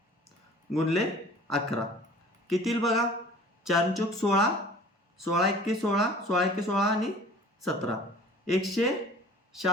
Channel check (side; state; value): both; normal; correlation 0.46